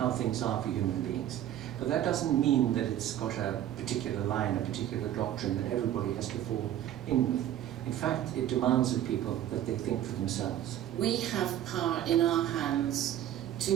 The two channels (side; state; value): left; quieter; 11.7 dB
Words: things are for human beings. But that doesn't mean that it's got a particular line, a particular doctrine that everybody has to fall in with. In fact, it demands of people that they think for themselves. We have power in our hands